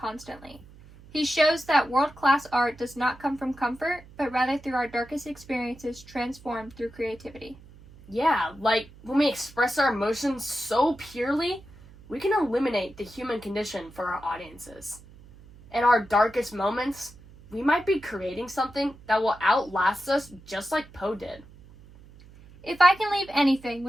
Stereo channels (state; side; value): noise; right; hum, 22 dB below the sound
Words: He shows that world-class art does not come from comfort, but rather through our darkest experiences transformed through creativity. Yeah, like when we express our emotions so purely, we can eliminate the human condition for our audiences. In our darkest moments, we might be creating something that will outlast us just like Poe did. If I can leave anything